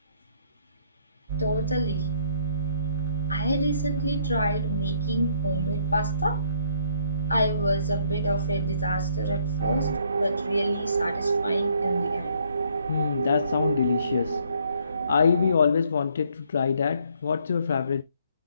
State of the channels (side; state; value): both; inverted; correlation -0.66